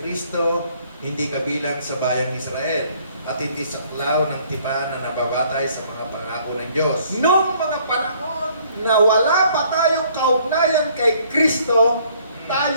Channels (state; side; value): inverted; both; correlation -0.62